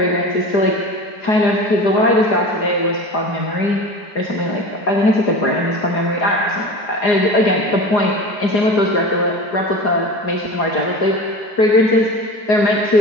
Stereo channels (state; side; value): late; right; 4.9 ms